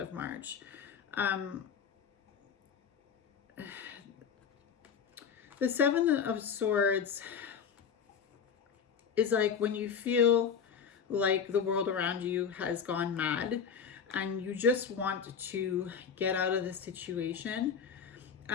March. The Seven of Swords is like when you feel like the world around you has gone mad and you just want to get out of the situation.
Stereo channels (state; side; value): quieter; right; 6.7 dB